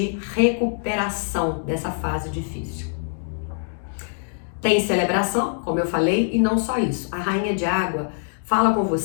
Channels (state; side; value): silent; right; 63 dB below the other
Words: recuperação dessa fase difícil. Tem celebração, como eu falei, e não só isso. A Rainha de Água fala com